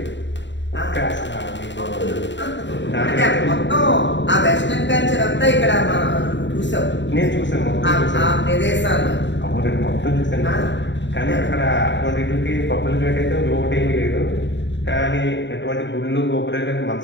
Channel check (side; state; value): right; late; 0.53 ms